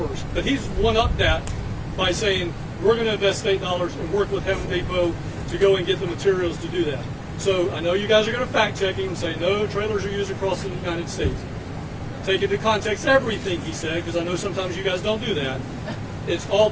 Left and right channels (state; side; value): identical; both; correlation 1.00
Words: But he's one-upped that by saying we're going to invest state dollars and work with Heaven Depot to go and get the materials to do that. So I know you guys are going to fact-check him and say no, trailers are used across the United States. Take into context everything he said, because I know sometimes you guys don't do that. It's all